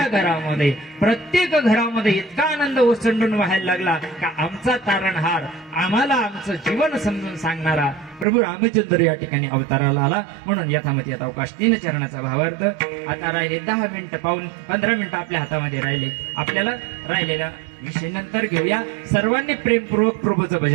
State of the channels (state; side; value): drops out; left; at 8.2 s